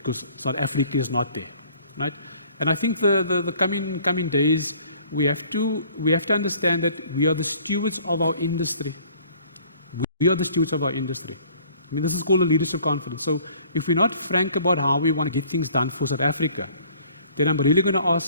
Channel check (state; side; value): inverted; both; correlation -0.55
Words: South Africa is not there, right? And I think the coming days, we have to understand that we are the stewards of our industry. We are the stewards of our industry. I mean, this is called a leadership conference. So if we're not frank about how we want to get things done for South Africa, then I'm really going to